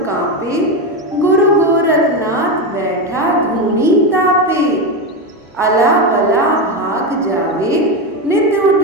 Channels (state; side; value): normal; both; correlation 0.14